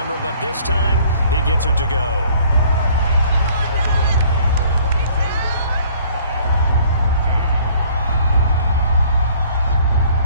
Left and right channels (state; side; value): inverted; both; correlation -0.57